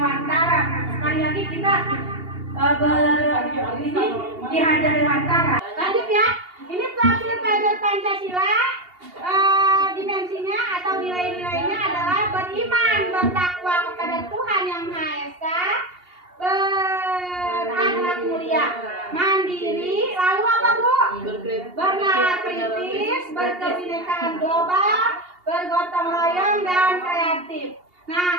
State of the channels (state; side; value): late; left; 2.8 ms